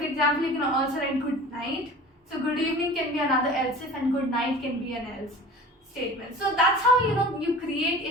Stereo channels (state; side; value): normal; both; correlation 0.39